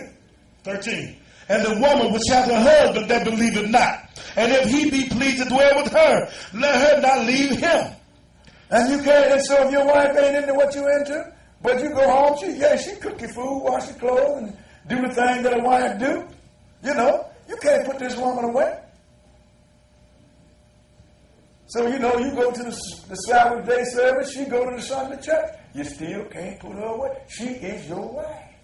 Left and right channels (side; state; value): both; identical; correlation 1.00